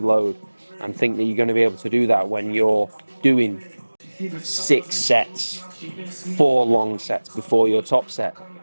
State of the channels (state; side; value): inverted; both; correlation -1.00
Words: load, and think that you're going to be able to do that when you're doing 6 sets, 4 long sets before your top set.